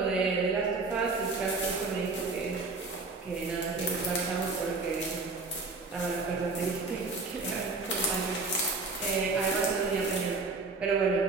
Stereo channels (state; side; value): quieter; left; 3.8 dB